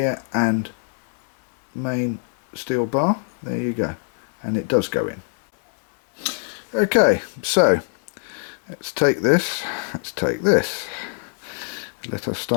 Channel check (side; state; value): right; silent; 63 dB below the other